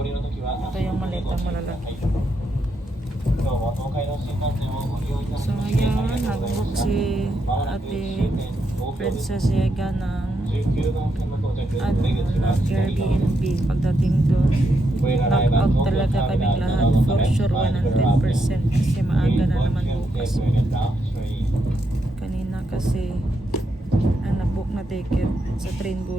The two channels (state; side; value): normal; both; correlation 0.81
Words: Ito yung malitang malalaki. So ngayon, nag-book si Ate Princess Yega ng Airbnb. Pagdating doon, knock-out talaga kaming lahat. For sure, 100% kasi maaga na naman bukas. Kanina kasi ang nag-book na ticket sa train